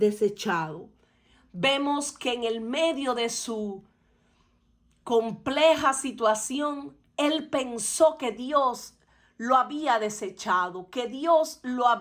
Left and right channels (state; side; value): identical; both; correlation 1.00